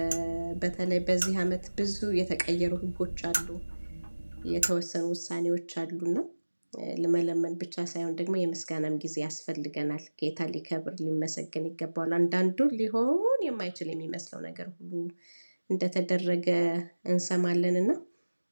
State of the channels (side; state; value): both; inverted; correlation -1.00